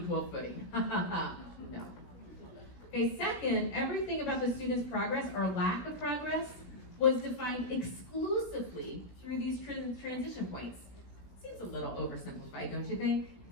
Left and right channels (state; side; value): late; right; 16 ms